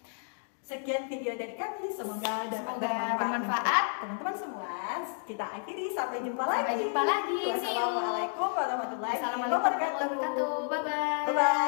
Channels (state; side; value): silent; right; digital silence